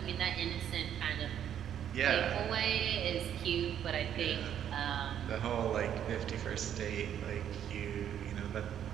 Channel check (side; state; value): left; quieter; 9.7 dB